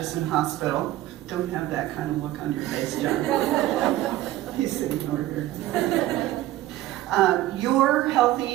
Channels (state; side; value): quieter; left; 15.3 dB